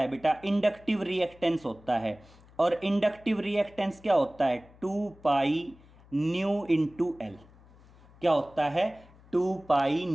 बेटा, इंडक्टिव रिएक्टेंस होता है। और इंडक्टिव रिएक्टेंस क्या होता है, 2 पाई न्यू इंटू एल। क्या होता है, 2 पाई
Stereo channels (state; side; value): noise; left; hum, 25 dB below the sound